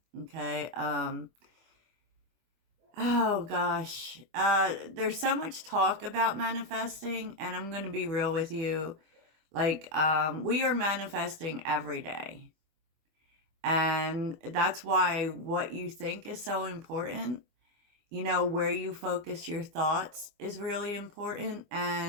Okay. Oh gosh. There's so much talk about manifesting, and I'm going to be real with you. We are manifesting every day. And that's why what you think is so important. Where you focus your thoughts is really important.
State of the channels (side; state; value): left; late; 24 ms